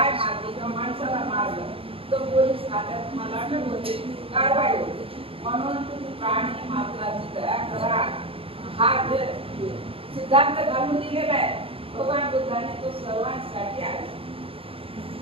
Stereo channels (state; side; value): late; left; 0.27 ms